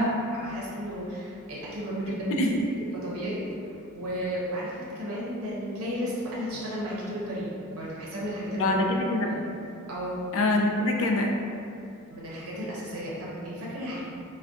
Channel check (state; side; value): normal; both; correlation 0.38